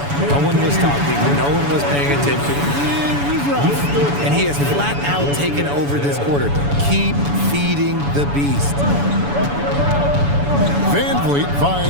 No one was talking. No one was paying attention. And he has flat out taken over this quarter. Keep feeding the beast. Van Vliet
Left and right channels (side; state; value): left; late; 7.0 ms